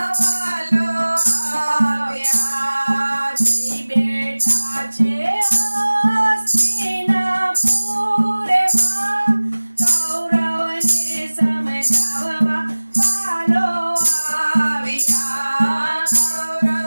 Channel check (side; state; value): both; inverted; correlation -1.00